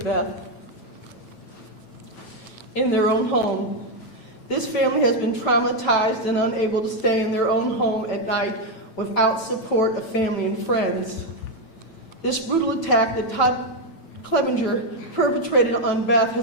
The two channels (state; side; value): late; right; 9.0 ms